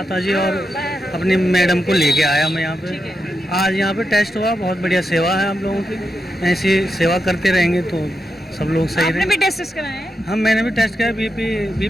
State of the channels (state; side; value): normal; both; correlation 0.87